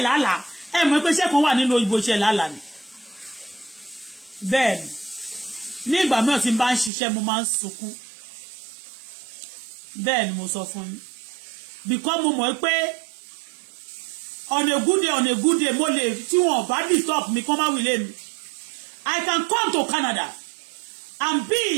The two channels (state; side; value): drops out; left; at 6.9 s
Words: làálàá ẹ mọ̀ pé iṣẹ́ kan wà nínú òyìnbó iṣẹ́ làálàá ni bẹ́ẹ̀ ni ní ìgbà mìíràn tí n bá ń ṣiṣẹ́ mo máa ń sunkún bẹ́ẹ̀ ni mo sọ fún yín because mo mọ̀ pé on a good day mo lè tí wọn bá disturb mi kó má wílé mi I can come to Canada and